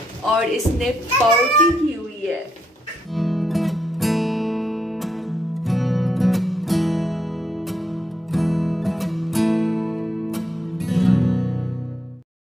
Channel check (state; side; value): normal; both; correlation 0.79